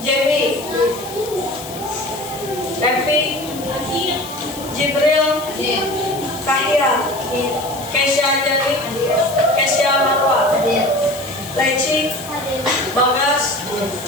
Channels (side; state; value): left; noise; hiss, 14 dB below the sound